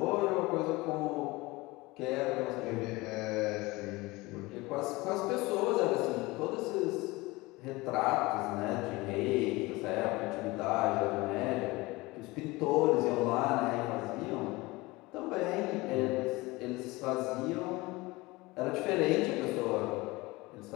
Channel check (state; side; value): quieter; right; 22.0 dB